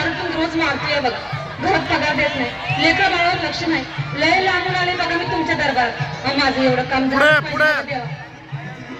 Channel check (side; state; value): both; identical; correlation 1.00